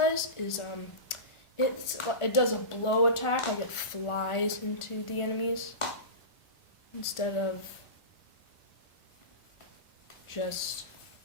is it does a blow attack, like it flies into the enemies instead of just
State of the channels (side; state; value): right; late; 1.4 ms